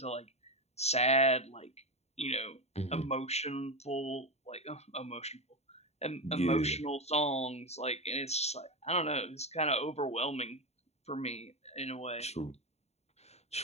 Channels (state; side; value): late; right; 0.31 ms